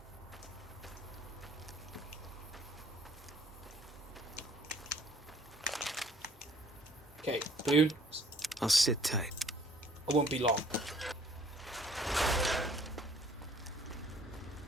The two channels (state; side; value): normal; both; correlation 0.58